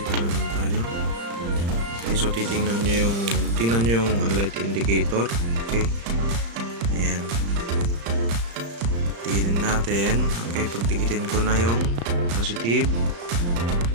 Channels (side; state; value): left; late; 35 ms